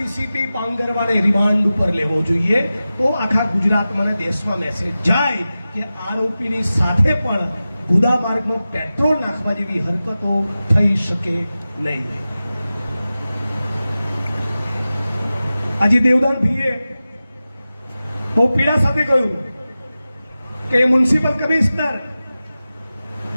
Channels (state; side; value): inverted; both; correlation -0.95